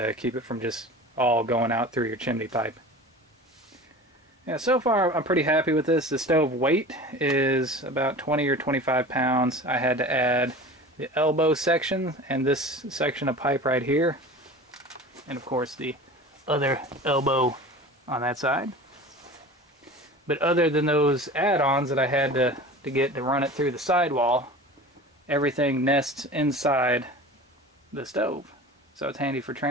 keep it from just all going out through your chimney pipe. Yeah, so far I'm pretty happy with this. The stove weight is about 20 or 25 pounds. I had to add the elbow section and this section of pipe right here, and of course the other elbow on that side. But other than those add-ons that I had to get to run it through the sidewall, everything nests inside the stove, so it's handy for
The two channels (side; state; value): both; normal; correlation 0.37